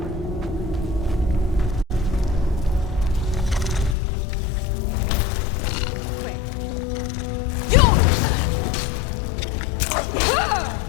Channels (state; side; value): drops out; right; at 4.0 s